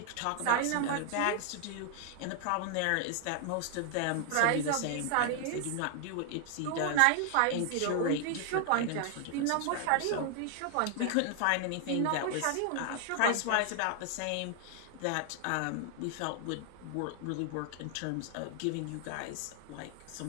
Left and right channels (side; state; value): both; different; correlation 0.00